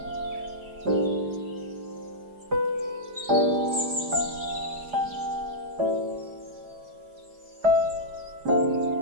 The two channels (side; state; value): left; late; 4.8 ms